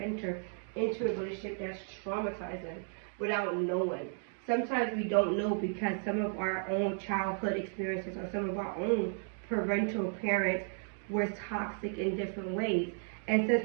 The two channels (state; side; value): silent; left; 55 dB below the other